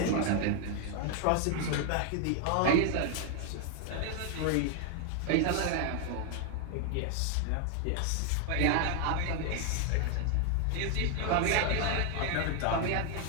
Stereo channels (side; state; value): both; different; correlation 0.00